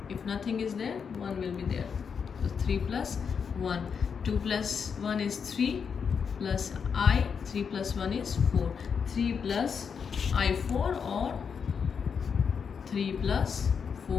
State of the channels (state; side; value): quieter; right; 6.4 dB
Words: if nothing is there, 1 will be there. So 3 plus 1. 2 plus 1 is 3 plus I. 3 plus 1 is 4. 3 plus I4 or 3 plus